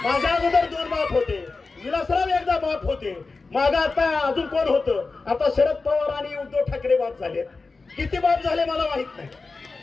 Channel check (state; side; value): quieter; right; 3.9 dB